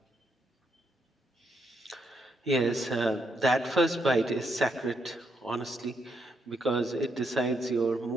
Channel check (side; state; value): both; normal; correlation 0.78